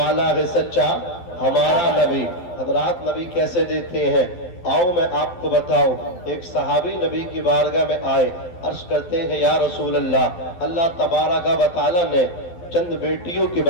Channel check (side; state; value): right; late; 12 ms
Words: ہے سچا ہمارا نبی حضرات نبی کیسے دیتے ہیں آؤ میں آپ کو بتاؤں ایک صحابی نبی کی بارگاہ میں آئے عرض کرتے ہیں یا رسول اللہ اللہ تبارک و تعالی نے چند بیٹیوں کے